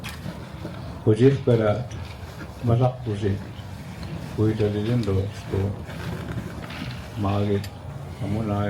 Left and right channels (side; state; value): both; identical; correlation 1.00